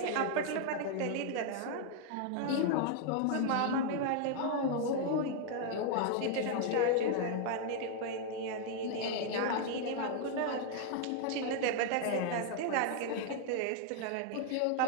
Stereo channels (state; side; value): different; both; correlation 0.00